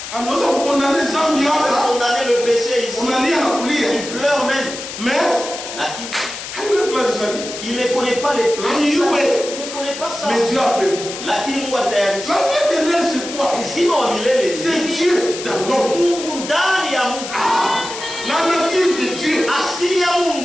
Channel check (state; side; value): noise; left; hiss, 9 dB below the sound